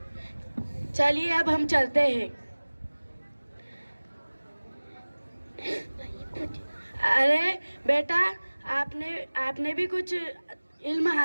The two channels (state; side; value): inverted; both; correlation -1.00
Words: चलिए अब हम चलते हैं। अरे बेटा, आपने भी कुछ इल्म